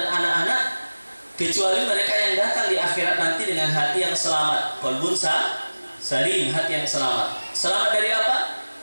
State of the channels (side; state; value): both; inverted; correlation -1.00